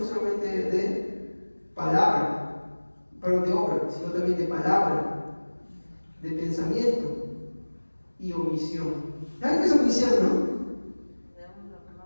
solamente de palabra, perdón, de obra, sino también de palabra, de pensamiento y omisión. ¿Saben qué es omisión, no?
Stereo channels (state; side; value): inverted; both; correlation -1.00